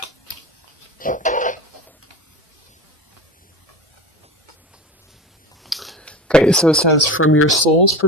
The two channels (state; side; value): normal; both; correlation 0.29